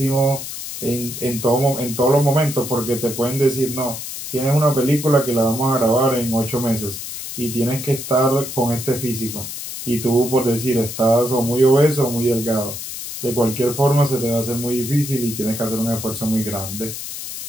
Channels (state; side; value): noise; left; hiss, 8 dB below the sound